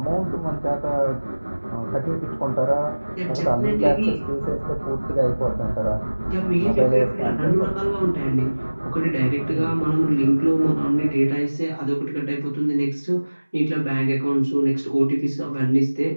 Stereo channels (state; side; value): inverted; both; correlation -1.00